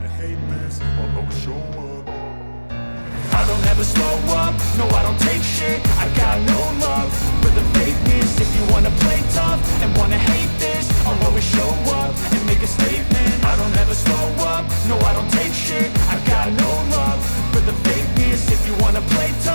hate this, I'll always show up. I don't ever slow up, no I don't take shit. I got no love for the fakeness. If you wanna play tough and wanna hate this, I'll always show up and make a statement. I don't ever slow up, no I don't take shit. I got no love for the fakeness. If you wanna play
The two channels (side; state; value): both; inverted; correlation -1.00